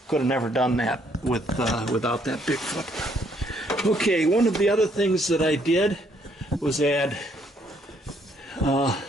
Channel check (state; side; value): normal; both; correlation 0.68